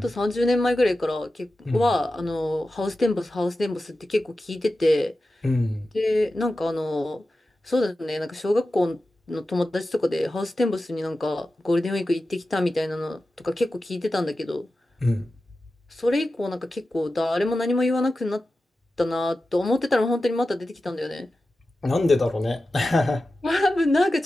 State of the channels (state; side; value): normal; both; correlation 0.93